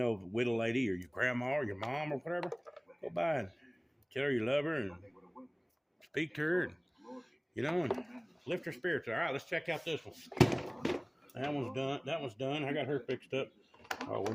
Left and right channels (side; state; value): both; identical; correlation 1.00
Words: widow lady or your grandma or your mom or whatever, go by and tell her you love her and speak to her, and you know, and lift her spirits. All right, let's check out this one. That one's done. That one's done. I got her fixed up. Oh, we